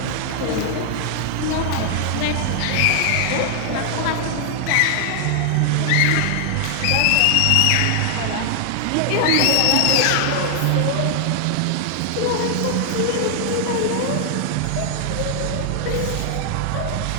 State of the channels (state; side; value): different; both; correlation 0.00